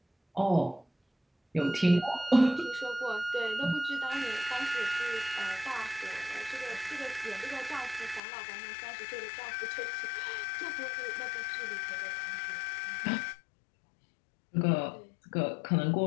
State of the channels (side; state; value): right; drops out; at 8.2 s